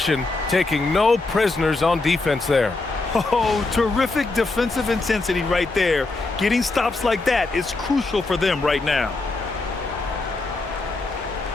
taking no prisoners on defense there. Oh, terrific defensive intensity right there. Getting stops like that is crucial for them right now.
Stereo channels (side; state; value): right; quieter; 3.4 dB